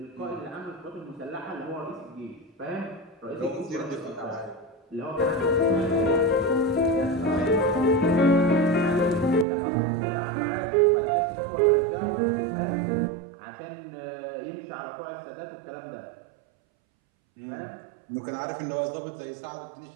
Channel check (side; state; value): left; drops out; at 9.5 s